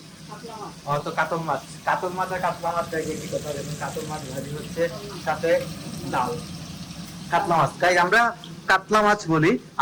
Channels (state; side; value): identical; both; correlation 1.00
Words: তো কাতল মাছ আর কাতলা মাছ দেখে কি কথা বলবেন। কাতল মাছ ভাজি হচ্ছে, সাথে ডাল। কাতলা মাছ, তাই আমরা কাতলা মাছ বলি।